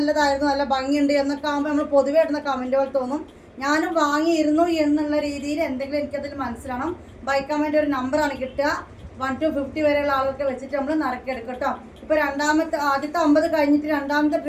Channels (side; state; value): both; identical; correlation 1.00